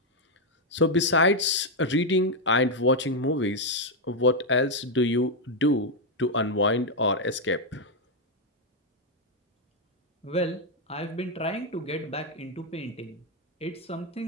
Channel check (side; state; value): both; normal; correlation 0.01